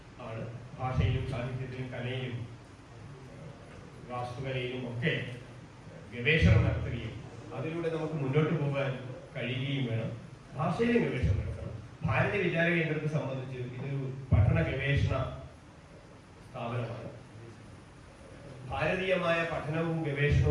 ആണ്. ഭാഷയിലും സാഹിത്യത്തിലും കലയിലും വാസ്തുകലയിലും ഒക്കെ ഗവേഷണം നടത്തുകയും അതിലൂടെ നമുക്ക് മുന്നോട്ട് പോകാൻ കഴിയുകയും വേണം. ഭാഷയിലും ഗവേഷണം നടത്തണം. ഭാരതീയ വിചാര കേന്ദ്രത്തെ സംബന്ധിച്ച് ഇതൊരു പഠന ഗവേഷണ സ്ഥാപനമാണ്. ഭാരതീയമായ പഠനവും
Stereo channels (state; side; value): identical; both; correlation 1.00